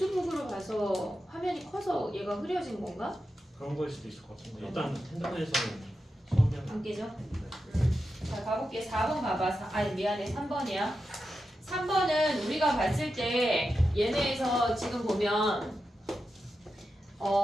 봐서 화면이 커서 얘가 흐려진 건가? 그런 거일 수도 있을 것 같은데 일단 핸드폰에서는 선명. 안 깨져? 자 가볼게. 4번 가봐. 아니 미안해. 3번이야. 3번은 우리가 봤을 때 얘네에서 지금 보면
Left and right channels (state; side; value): normal; both; correlation 0.89